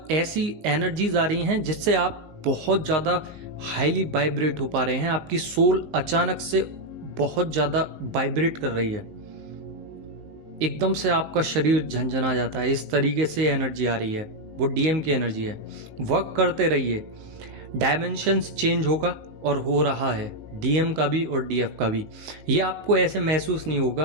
ऐसी एनर्जीज आ रही हैं जिससे आप बहुत ज़्यादा हाईली वाइब्रेट हो पा रहे हैं। आपकी सोल अचानक से बहुत ज़्यादा वाइब्रेट कर रही है, एकदम से आपका शरीर झंझना जाता है। इस तरीके से एनर्जी आ रही है, वो डीएम की एनर्जी है। वर्क करते रहिए, डायमेंशंस चेंज होगा और हो रहा है डीएम का भी और डीएफ का भी। ये आपको ऐसे महसूस नहीं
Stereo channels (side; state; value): left; late; 19 ms